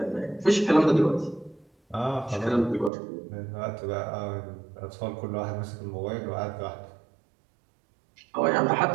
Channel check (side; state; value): left; drops out; at 2.9 s